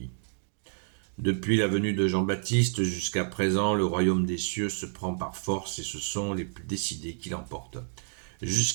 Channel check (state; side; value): silent; left; digital silence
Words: Depuis la venue de Jean-Baptiste jusqu'à présent, le royaume des cieux se prend par force et ce sont les plus décidés qui l'emportent.